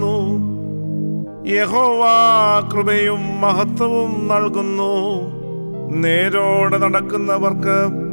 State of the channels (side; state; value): both; inverted; correlation -1.00